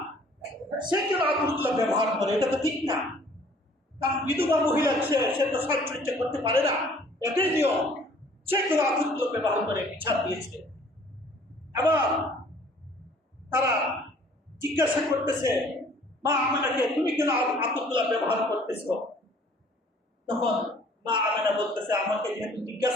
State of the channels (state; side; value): normal; both; correlation 0.55